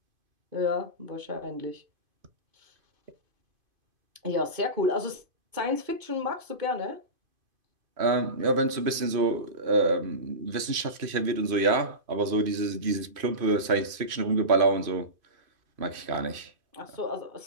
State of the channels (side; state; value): left; late; 2.5 ms